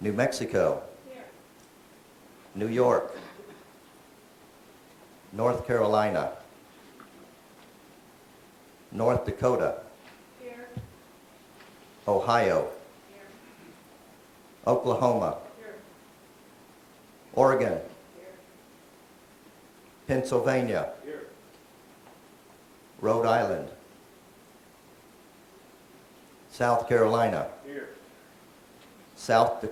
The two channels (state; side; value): identical; both; correlation 1.00